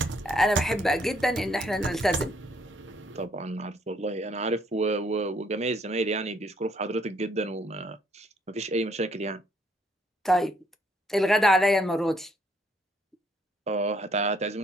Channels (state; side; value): normal; both; correlation 0.67